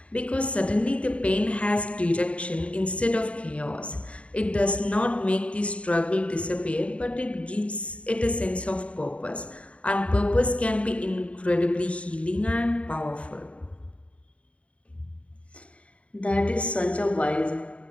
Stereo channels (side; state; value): right; late; 0.062 ms